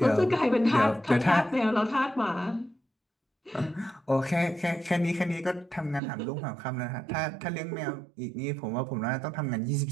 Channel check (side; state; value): left; drops out; at 6.0 s